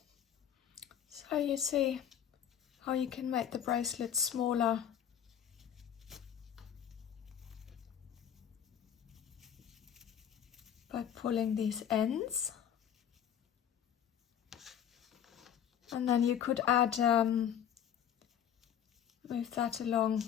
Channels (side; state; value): right; quieter; 9.3 dB